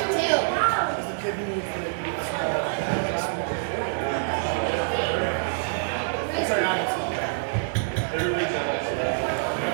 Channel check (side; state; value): left; silent; digital silence